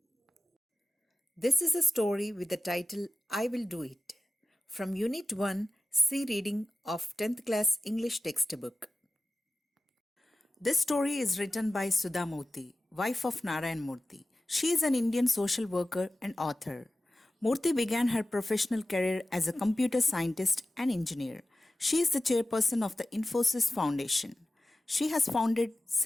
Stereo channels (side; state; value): both; normal; correlation 0.94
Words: This is a story with the title I Will Do It from Unit 1 C Reading of 10th class English textbook. This story is written by Sudha Murthy, wife of Narayan Murthy. She is an Indian social worker and author. Murthy began her professional career as a computer scientist and engineer. She is the chairperson of the Infosys Foundation. She has founded